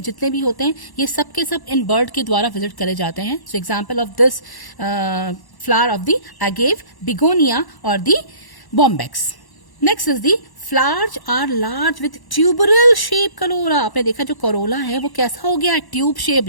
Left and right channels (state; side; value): late; right; 1.1 ms